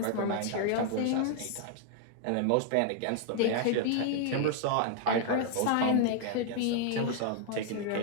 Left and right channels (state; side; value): different; both; correlation 0.00